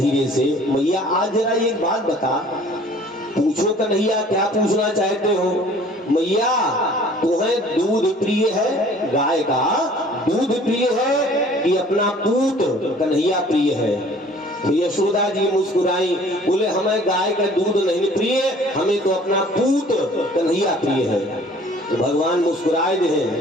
से, मैया आज जरा एक बात बता। पूछो कन्हैया, क्या पूछना चाहते हो? मैया तुम्हें दूध प्रिय है, गाय का दूध प्रिय है कि अपना पूत कन्हैया प्रिय है? तो यशोदा जी मुस्कुराई, बोले हमें गाय का दूध नहीं प्रिय, हमें तो अपना पूत कन्हैया प्रिय है। तो भगवान मुस्कुराए दे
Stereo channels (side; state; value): both; normal; correlation 0.52